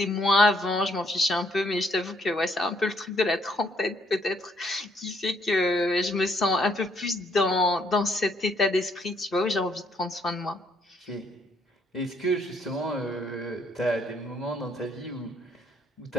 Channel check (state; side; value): normal; both; correlation 0.69